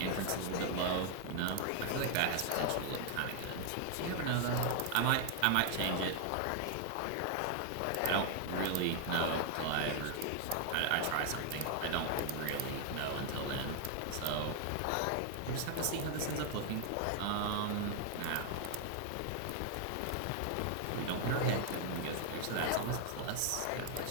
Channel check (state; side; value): different; both; correlation 0.00